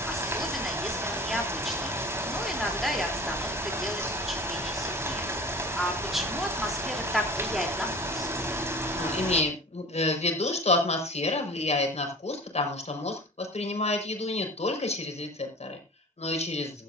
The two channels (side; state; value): both; normal; correlation 0.40